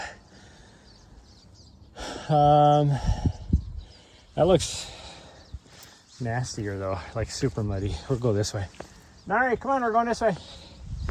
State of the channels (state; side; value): identical; both; correlation 1.00